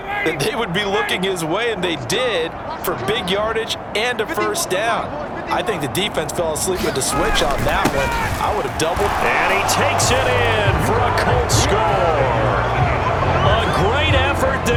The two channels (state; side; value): identical; both; correlation 1.00